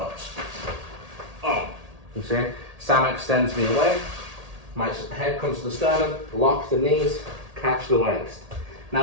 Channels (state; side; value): late; left; 1.8 ms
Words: Oh, you see? Sam extends me away, my head comes to the sternum, lock the knees, catch the waist.